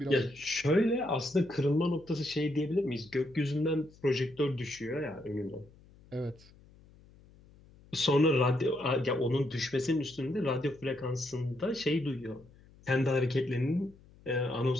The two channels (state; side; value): noise; left; hum, 25 dB below the sound